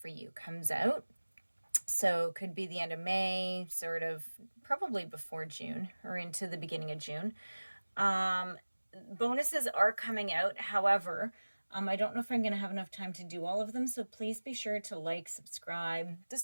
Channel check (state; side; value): inverted; both; correlation -1.00